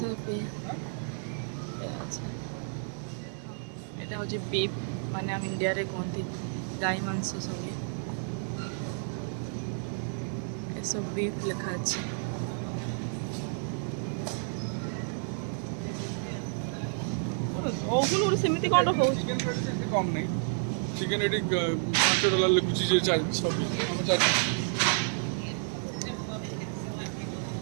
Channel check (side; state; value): left; silent; 57 dB below the other